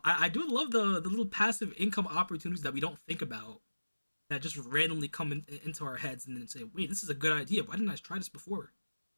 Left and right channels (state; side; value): inverted; both; correlation -1.00